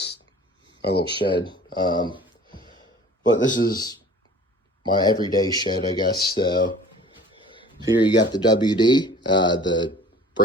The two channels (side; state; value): both; normal; correlation 0.47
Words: my little shed. But this is my everyday shed, I guess. So here you got the WD, the